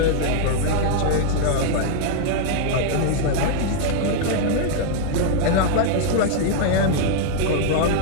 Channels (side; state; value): both; different; correlation -0.01